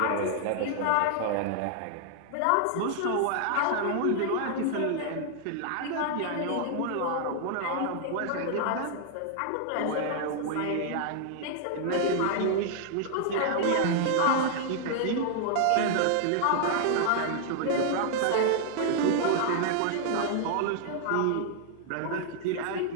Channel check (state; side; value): different; both; correlation -0.01